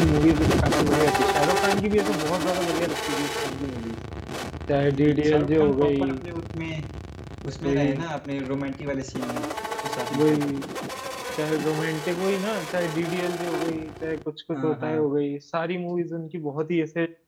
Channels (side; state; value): both; identical; correlation 1.00